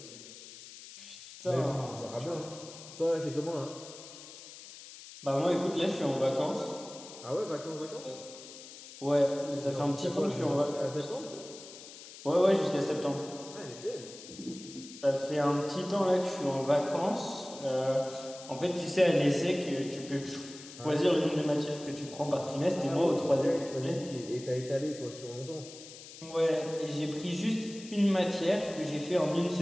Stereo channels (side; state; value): left; noise; hiss, 15 dB below the sound